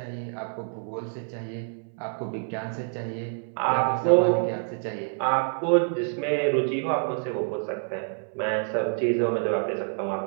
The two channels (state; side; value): silent; left; 60 dB below the other